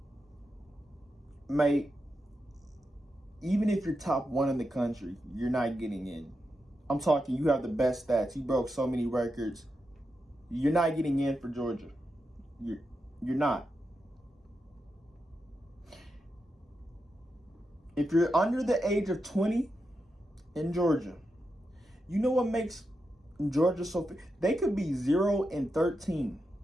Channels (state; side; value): normal; both; correlation 0.87